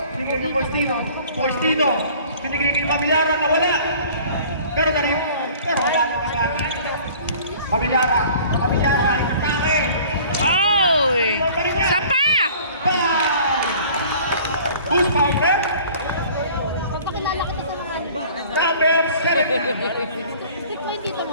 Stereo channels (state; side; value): inverted; both; correlation -0.49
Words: Binigay kay Faustino. Faustino. Binigay kay Pamilyara na wala. Pero wala naman. Pamilyara. Pamilyara. Inatake. Oy! Isa pa! Who's founder? Papakilala kita sa mga Number 7. stick mo yung dito